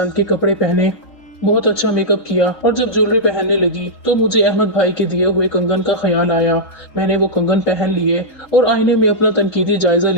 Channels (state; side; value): late; right; 3.8 ms